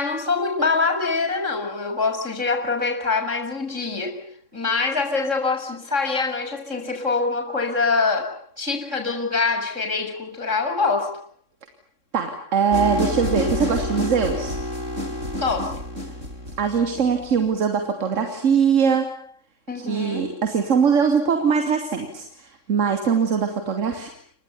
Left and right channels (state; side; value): late; left; 3.6 ms